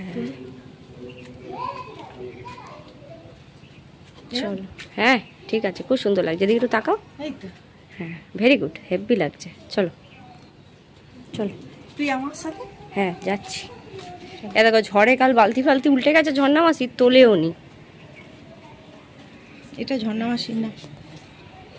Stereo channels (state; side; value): identical; both; correlation 1.00